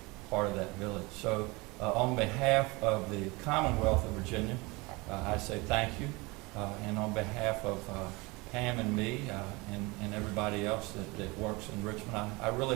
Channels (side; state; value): left; quieter; 24.9 dB